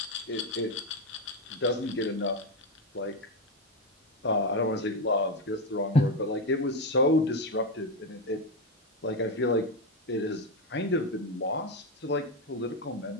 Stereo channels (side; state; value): both; normal; correlation 0.10